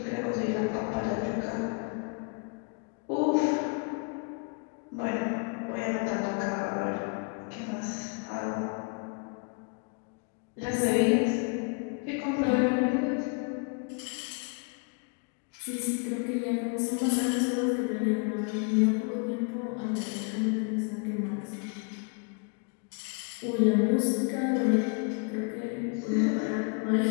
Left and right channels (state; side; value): quieter; right; 36.1 dB